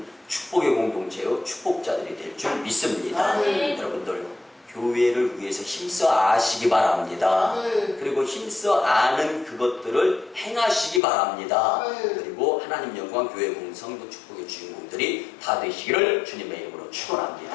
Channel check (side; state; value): right; drops out; at 11.0 s